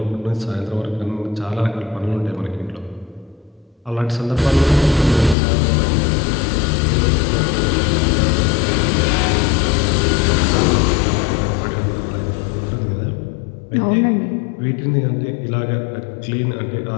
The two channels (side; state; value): right; drops out; at 5.4 s